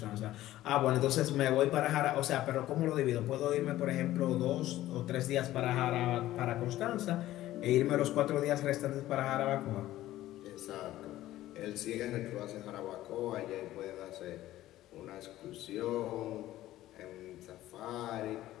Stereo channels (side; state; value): right; quieter; 14.8 dB